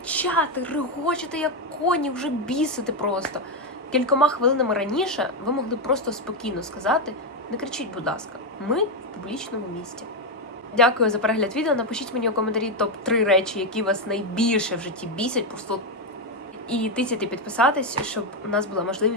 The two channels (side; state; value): both; normal; correlation 0.06